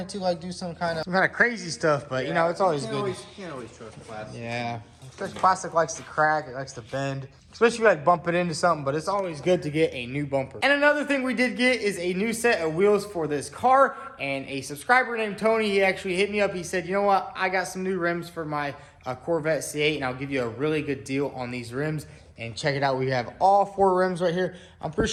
to do some kind of crazy stuff. But you know, it's always good. You can't always trust plastic. Yeah, especially plastic likes to crack. It likes to bend, especially if you bump it into something. But it's always good to get a new bumper. And another thing we did get is a new set of wheels for this car. And a subscriber named Tony, he actually hit me up. He said, you know what? I got some new rims for my Corvette C8, and I'll give you a really good deal on these rims. And check it out, we have all 4 rims right here. I'm pretty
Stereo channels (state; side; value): identical; both; correlation 1.00